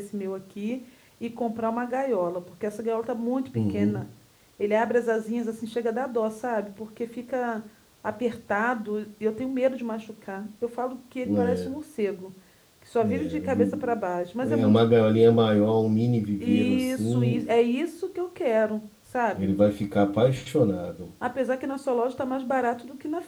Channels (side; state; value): both; identical; correlation 1.00